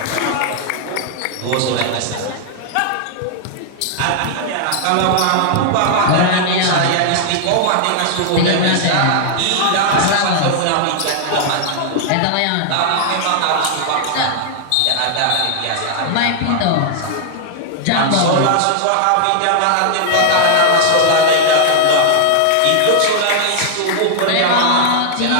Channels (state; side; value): different; both; correlation 0.00